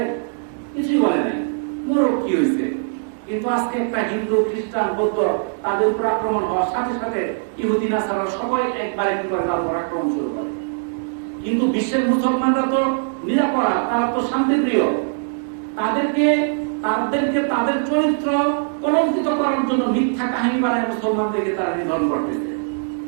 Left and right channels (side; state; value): left; silent; digital silence